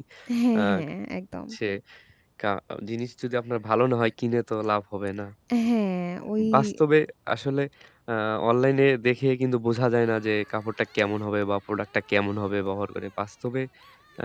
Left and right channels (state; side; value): identical; both; correlation 1.00